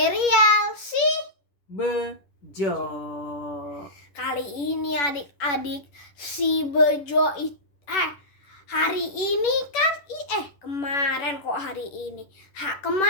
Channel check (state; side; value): late; right; 11 ms